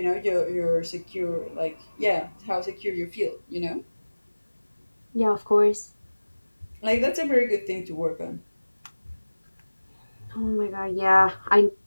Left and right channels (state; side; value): inverted; both; correlation -1.00